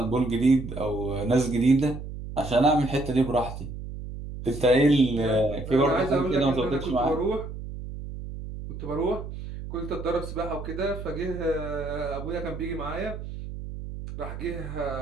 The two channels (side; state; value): right; noise; hum, 9 dB below the sound